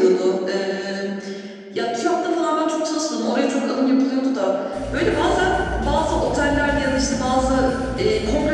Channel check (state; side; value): identical; both; correlation 1.00